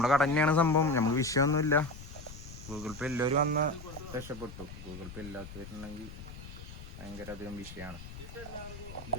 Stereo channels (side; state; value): left; noise; rumble, 13 dB below the sound